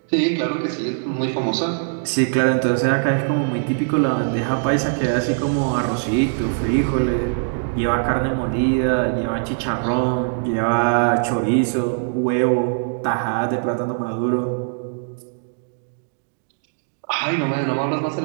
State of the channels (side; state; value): left; silent; digital silence